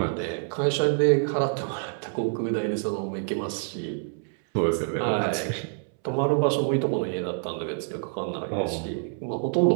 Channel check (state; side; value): silent; left; 60 dB below the other